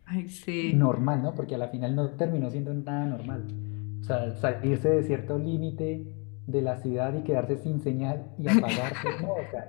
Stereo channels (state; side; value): quieter; right; 33.9 dB